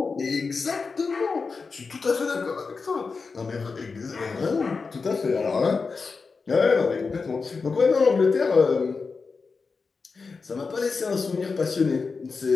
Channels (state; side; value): quieter; right; 4.7 dB